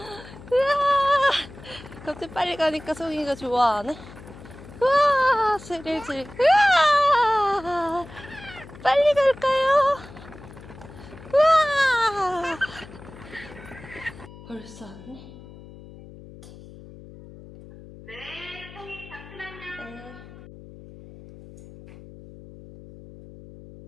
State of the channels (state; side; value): noise; left; hum, 18 dB below the sound